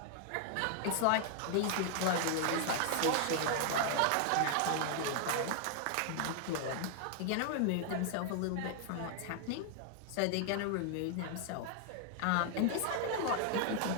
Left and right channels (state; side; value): different; both; correlation 0.00